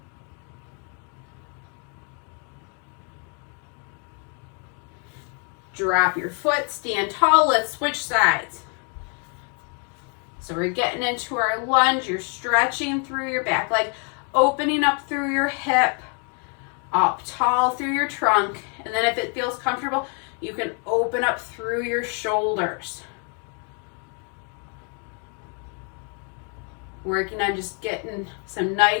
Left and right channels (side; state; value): right; quieter; 39.0 dB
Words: Drop your foot, stand tall, let's switch sides. So we're getting into our lunge. You're stretching through your back leg, opening up through your hip, up tall through your trunk. And then if it feels comfortable, you can open up through your shoulders. Working on just getting some